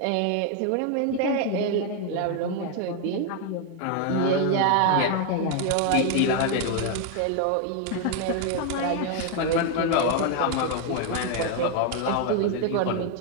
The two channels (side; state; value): both; different; correlation 0.01